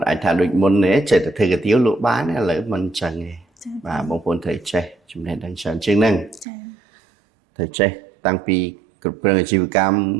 ់អាចថាដូចមុនទេចេះតែធ្វើកាទៀវលក់បានឥឡូវមិនអញ្ចឹងទេបាទបងប្អូនត្រូវចេះចំណេះដឹងច្រើនជាងហ្នឹងត្រូវចេះតាំងពីគ្រប់គ្រងអាជីវកម្ម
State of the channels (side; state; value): left; drops out; at 6.5 s